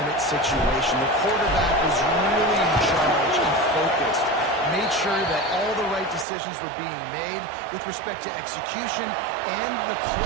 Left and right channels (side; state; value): left; drops out; at 6.2 s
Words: situation. The quarterback was really in charge and focused. Made sure that all the right decisions were being made with respect to execution and the